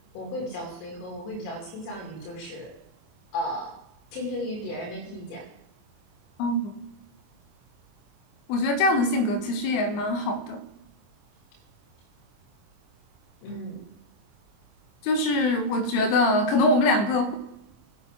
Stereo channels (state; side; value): late; right; 24 ms